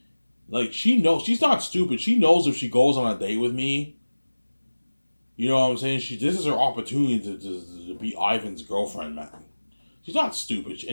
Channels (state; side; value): inverted; both; correlation -1.00